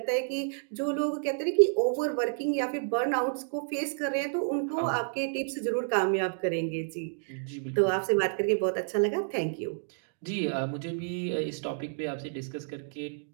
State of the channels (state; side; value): silent; left; digital silence